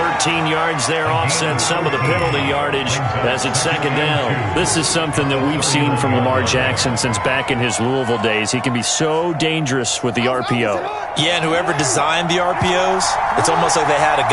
13 yards there offset some of the penalty yardage as it's second down. This is something that we've seen from Lamar Jackson since back in his Louisville days. He can be so dangerous with the RPO. Yeah, and whoever designed the RPOs, it's almost like they had a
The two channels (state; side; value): identical; both; correlation 1.00